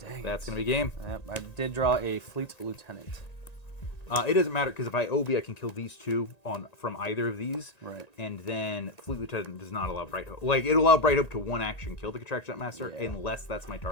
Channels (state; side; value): late; right; 1.9 ms